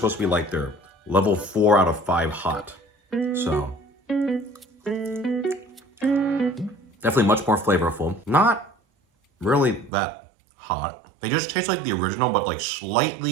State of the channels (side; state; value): left; drops out; at 9.9 s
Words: to be like their level 4 out of 5 hot. So definitely much more flavorful. Not really that hot. They just taste like the original, but like